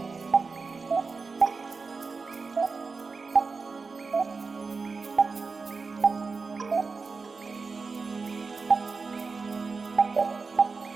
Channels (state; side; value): quieter; left; 4.4 dB